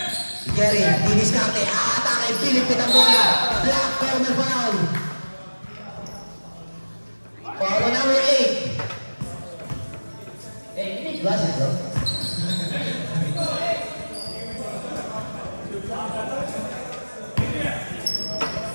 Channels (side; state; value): both; inverted; correlation -1.00